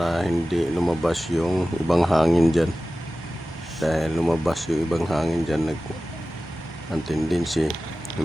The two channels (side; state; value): both; normal; correlation 0.95